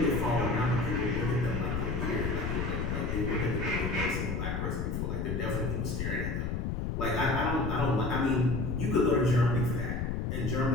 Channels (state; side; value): noise; left; rumble, 1 dB below the sound